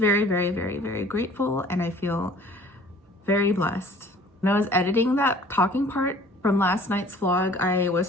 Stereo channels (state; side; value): normal; both; correlation 0.51